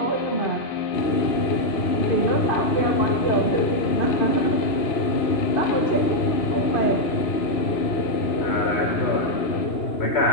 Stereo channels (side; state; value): right; late; 2.9 ms